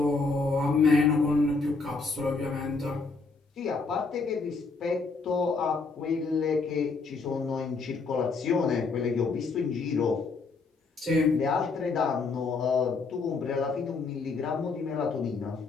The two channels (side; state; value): right; quieter; 4.2 dB